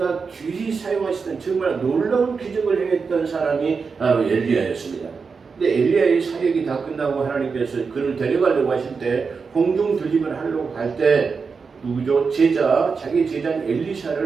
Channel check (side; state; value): left; quieter; 5.1 dB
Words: 귀히 사용하시던 정말 놀라운 기적을 행했던 사람이 바로 엘리야였습니다. 근데 엘리야의 사역이 다 끝나고 하나님께서 그를 데려가려고 하실 때 공중 들림을 하려고 할 때 누구죠? 자기 제자인